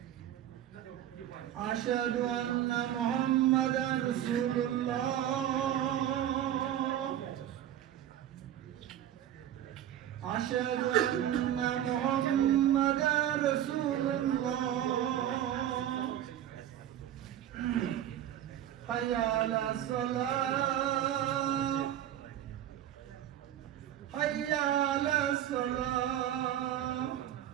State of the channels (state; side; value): quieter; left; 11.4 dB